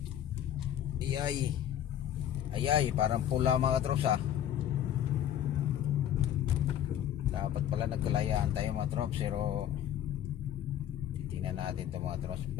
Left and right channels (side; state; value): right; quieter; 10.7 dB